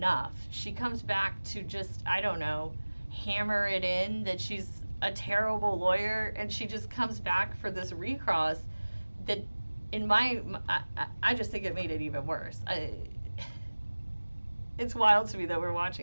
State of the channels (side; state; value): both; inverted; correlation -1.00